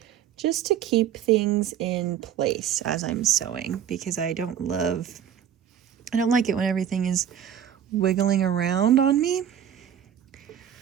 just to keep things in place as I'm sewing, because I don't like it when everything is wiggling around on me.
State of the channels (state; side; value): quieter; left; 9.5 dB